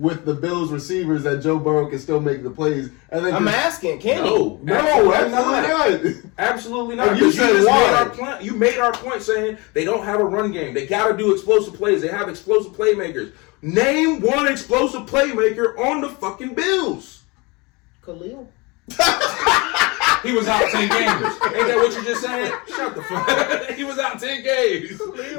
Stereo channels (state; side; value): quieter; right; 26.7 dB